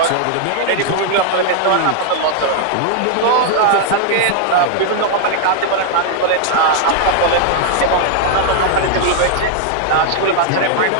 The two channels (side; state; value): both; different; correlation 0.00